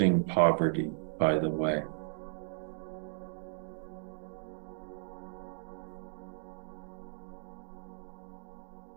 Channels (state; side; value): silent; left; digital silence